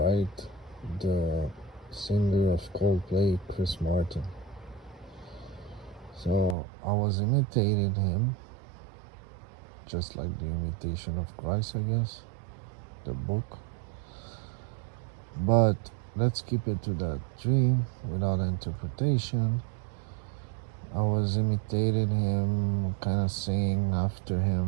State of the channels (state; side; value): drops out; left; at 6.6 s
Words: the singer of Coldplay, Chris Martin. So I was imitating him, just like the imitation of Christ, I guess, the book. But let's keep it to that dream without interpretation. I was imitating him, kind of singing after